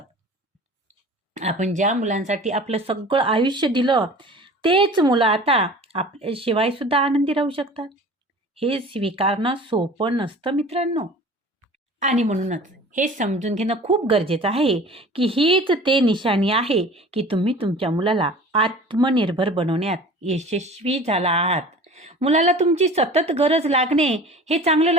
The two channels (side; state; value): both; normal; correlation 0.42